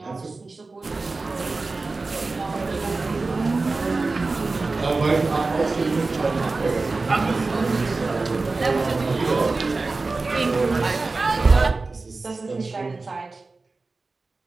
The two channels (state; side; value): quieter; left; 3.7 dB